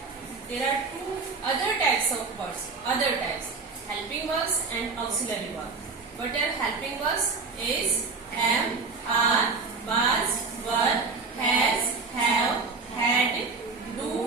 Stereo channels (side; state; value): left; quieter; 4.3 dB